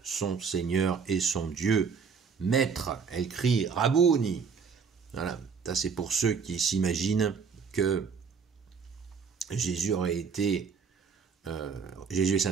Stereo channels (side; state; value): left; quieter; 5.9 dB